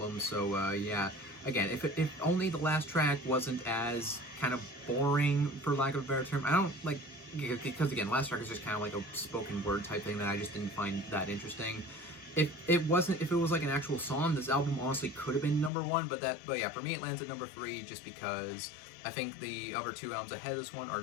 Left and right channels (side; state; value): right; drops out; at 15.7 s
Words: So yeah, again, if only the last track wasn't as kind of boring, for lack of a better term. I don't like, because again, last track is just kind of like a spoken word type thing that I just didn't find that interesting. If it was like an actual song, this album honestly could have been number 1, but yeah, for me it lands at number 3 just because I think the other 2 albums ahead of this one are